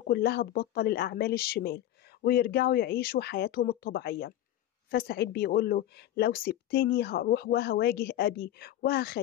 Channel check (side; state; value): right; quieter; 12.7 dB